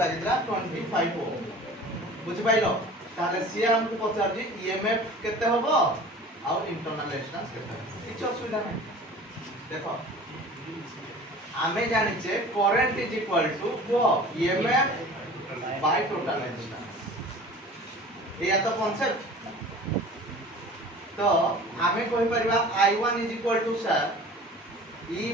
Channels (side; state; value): both; normal; correlation 0.42